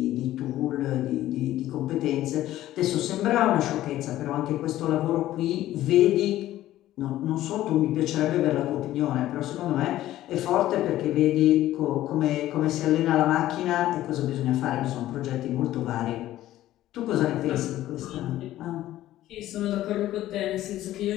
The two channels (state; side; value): quieter; right; 14.2 dB